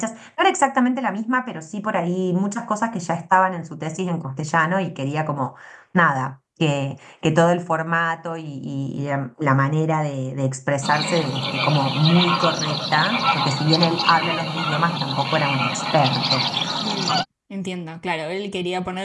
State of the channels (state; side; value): identical; both; correlation 1.00